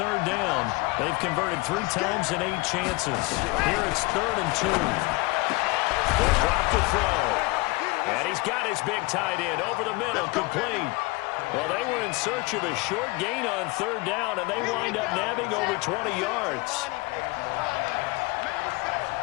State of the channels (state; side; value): quieter; right; 23.7 dB